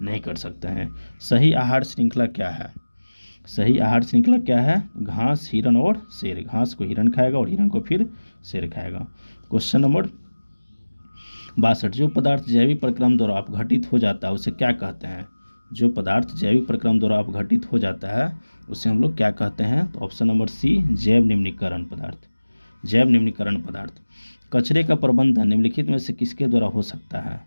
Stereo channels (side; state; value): both; inverted; correlation -1.00